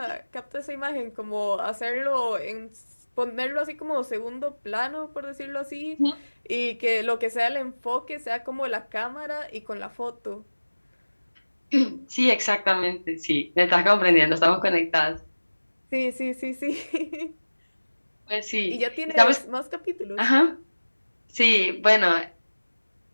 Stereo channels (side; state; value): both; inverted; correlation -1.00